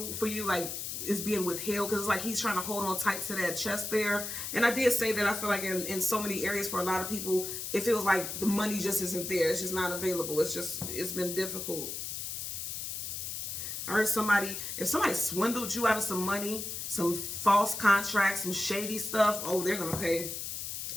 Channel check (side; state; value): left; noise; hiss, 5 dB below the sound